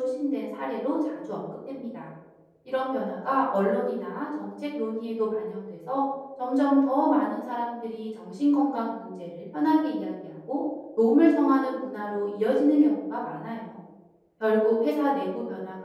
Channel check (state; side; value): identical; both; correlation 1.00